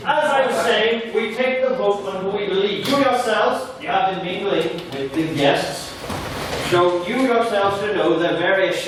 As I was saying, we take the vote on who we believe. You yourselves, you have been mingling with the guests. So you yourselves should know the various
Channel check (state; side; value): identical; both; correlation 1.00